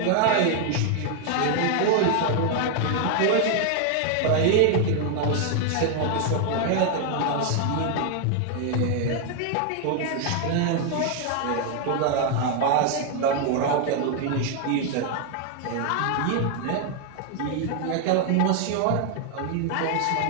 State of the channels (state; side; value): different; both; correlation 0.00